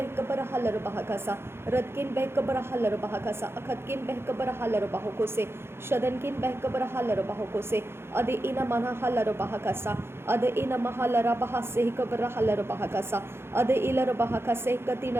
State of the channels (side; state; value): left; late; 0.12 ms